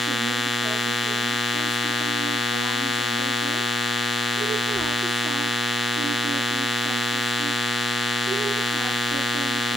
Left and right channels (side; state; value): both; normal; correlation 0.70